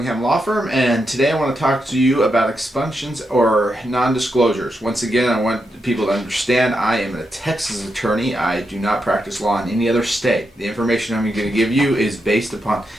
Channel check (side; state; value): both; normal; correlation 0.84